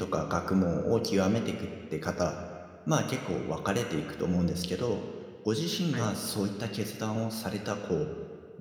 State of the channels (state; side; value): identical; both; correlation 1.00